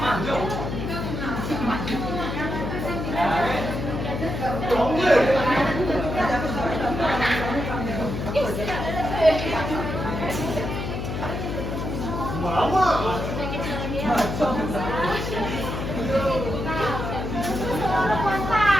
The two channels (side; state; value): left; noise; hum, 4 dB below the sound